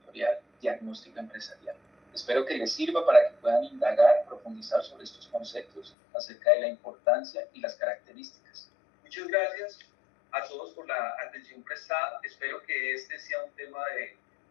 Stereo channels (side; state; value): right; drops out; at 5.9 s